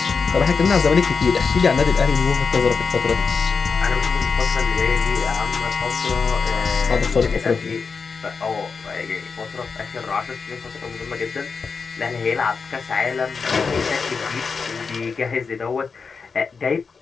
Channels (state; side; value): quieter; right; 5.1 dB